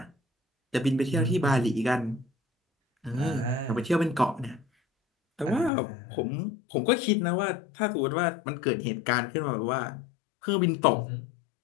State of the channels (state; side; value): drops out; right; at 5.7 s